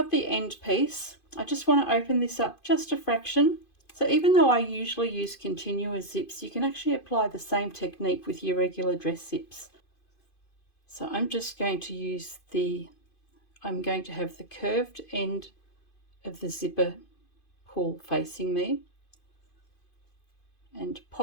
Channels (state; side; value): late; right; 2.5 ms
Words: the end piece. I just want to open this up just a fraction. So even though I usually use continuous zips, you can actually apply the same technique with your regular dress zips. So I'm just going to use I'm going to have the curved end of the zipper pull facing me, and